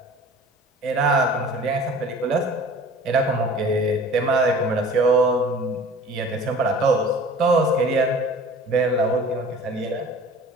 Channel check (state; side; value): normal; both; correlation 0.44